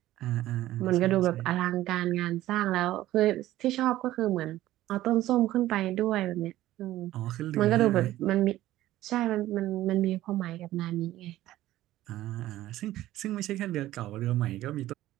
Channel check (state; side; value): quieter; left; 14.9 dB